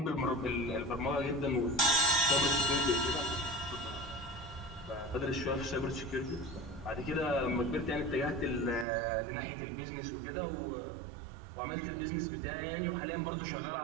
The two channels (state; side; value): drops out; left; at 8.8 s